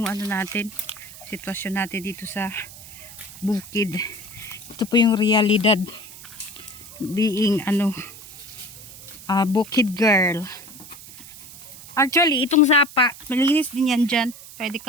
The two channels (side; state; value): right; noise; hiss, 16 dB below the sound